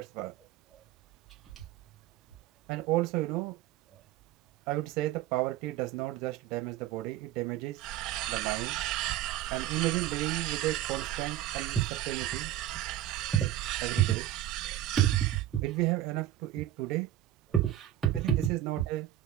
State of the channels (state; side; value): quieter; left; 12.7 dB